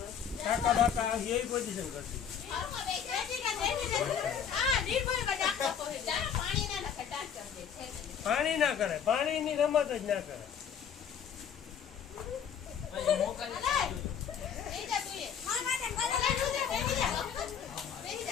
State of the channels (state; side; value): quieter; right; 7.9 dB